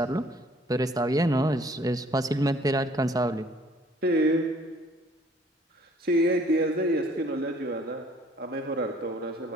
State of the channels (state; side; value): normal; both; correlation 0.58